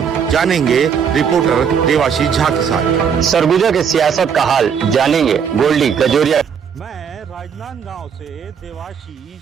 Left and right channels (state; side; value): quieter; left; 7.2 dB